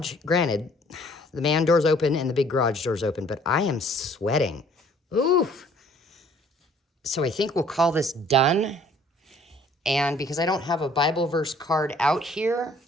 Granted, the man door's open and the big garage door's open, but I am sweating. Oof. So I think we'll call this done. And because I don't have a Bible verse card out here,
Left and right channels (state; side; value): normal; both; correlation 0.57